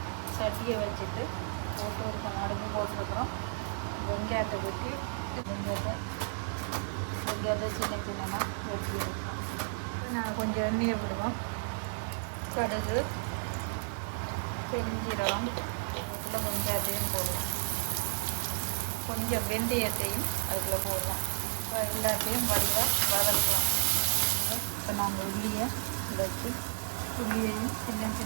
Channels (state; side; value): silent; left; 56 dB below the other